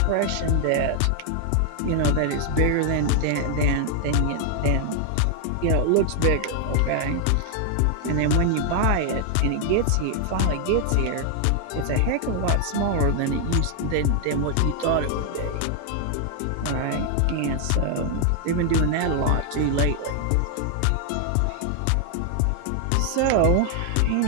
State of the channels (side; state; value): both; different; correlation 0.00